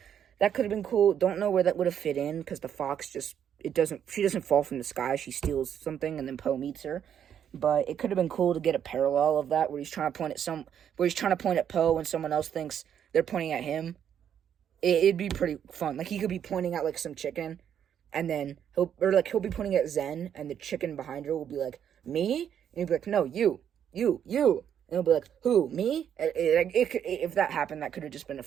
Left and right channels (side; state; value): left; quieter; 9.0 dB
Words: That could have been cool. Don't know where that would have fit in, because the fox she doesn't fall from the sky, she steals something, and then Poe meets her. But it could have been cool to get a parallel of that, where he's trying to point at Poe, and someone else thinks they're pointing at him. It'd be pretty fun. Like, he could be pointing at, like, some chicken, and then he'll be pointing at Zen, and the chicken behind her will be like, me? And he'll be like, no, you. And he'll be like, who, me? If that happened, that could have just been a